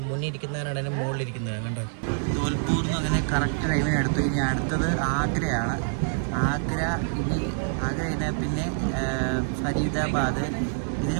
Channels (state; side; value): silent; left; digital silence